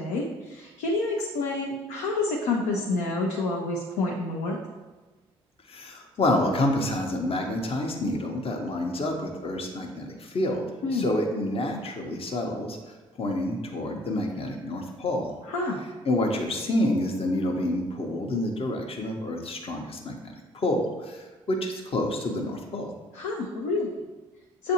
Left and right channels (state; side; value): normal; both; correlation 0.55